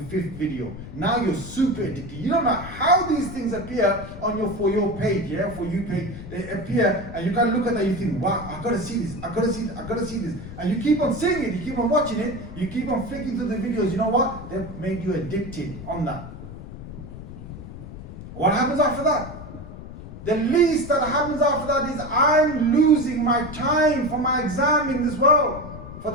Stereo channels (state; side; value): noise; left; rumble, 12 dB below the sound